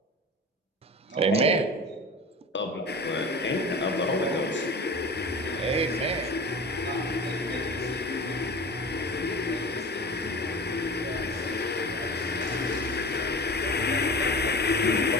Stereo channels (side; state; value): both; normal; correlation 0.35